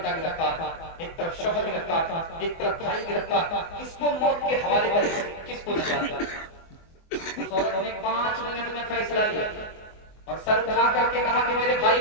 गिरफ्तार, एक तरफ शौहर गिरफ्तार, एक तरफ भाई गिरफ्तार, किसको मौत के हवाले करें, किसको नजात। उस औरत ने 5 मिनट में फैसला लिया और सर उठा करके कहा कि मेरे भाई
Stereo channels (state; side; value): late; right; 24 ms